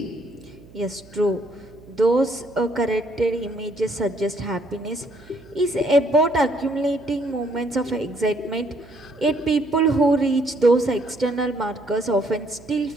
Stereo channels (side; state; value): right; noise; hum, 23 dB below the sound